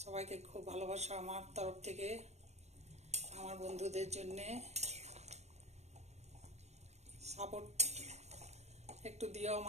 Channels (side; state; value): left; late; 0.32 ms